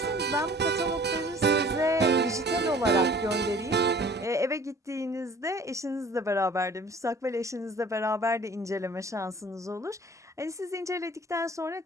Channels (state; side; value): normal; both; correlation 0.50